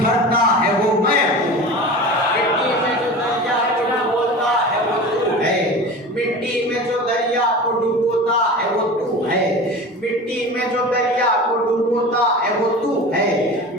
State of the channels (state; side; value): normal; both; correlation 0.33